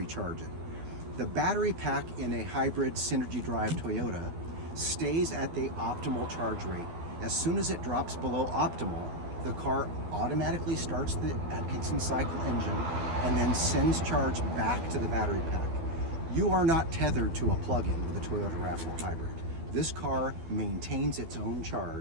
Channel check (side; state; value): left; late; 12 ms